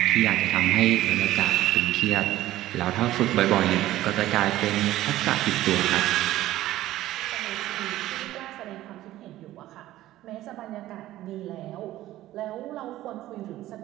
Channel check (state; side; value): quieter; left; 15.0 dB